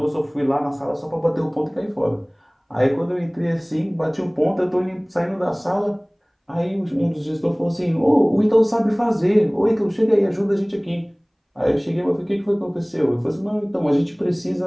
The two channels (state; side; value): identical; both; correlation 1.00